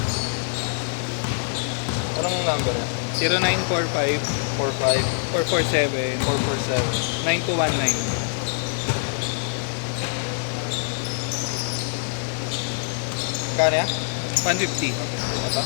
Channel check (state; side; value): silent; right; digital silence